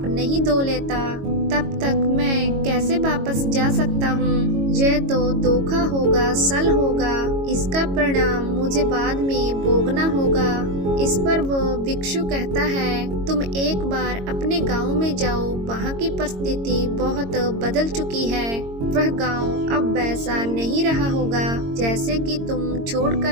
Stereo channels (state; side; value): late; left; 22 ms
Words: नहीं धो लेता, तब तक मैं कैसे वापस जा सकता हूँ। यह तो धोखा होगा, सल होगा। इसका परिणाम मुझे बाद में भोगना होगा। इस पर वो भिक्षु कहता है, तुम एक बार अपने गांव में जाओ, वहाँ की परिस्थिति बहुत बदल चुकी है। वह गांव अब वैसा नहीं रहा होगा जैसे कि तुम